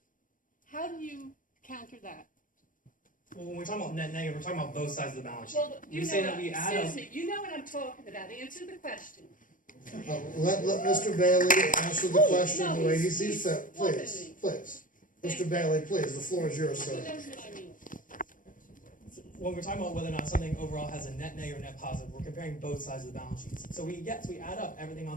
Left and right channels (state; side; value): late; right; 0.39 ms